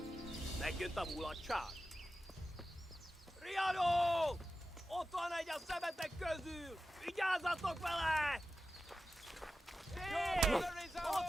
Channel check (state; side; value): normal; both; correlation 0.93